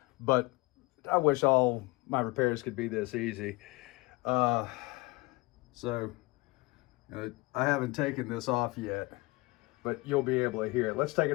but I wish all my repairs could be this easy. So I haven't taken this off yet, but you'll be able to hear it. Let's take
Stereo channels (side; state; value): right; quieter; 23.4 dB